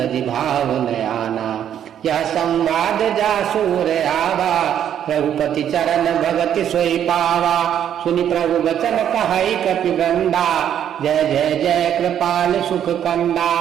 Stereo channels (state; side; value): quieter; left; 9.8 dB